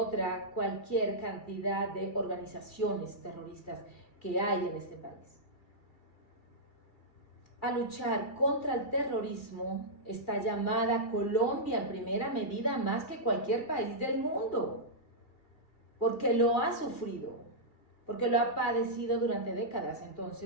cualquier cantidad de organizaciones terroristas que hay en este país. A luchar contra el terrorismo está llamada Colombia en primera medida más que cualquier país del mundo, porque lo ha sufrido, porque lo ha padecido durante décadas.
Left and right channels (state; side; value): late; right; 2.3 ms